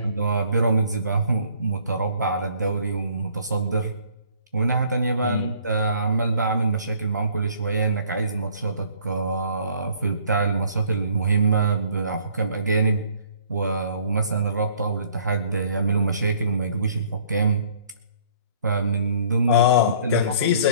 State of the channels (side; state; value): both; inverted; correlation -0.58